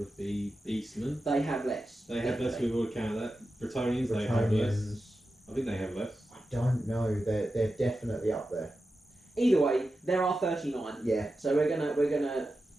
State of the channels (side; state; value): both; normal; correlation 0.91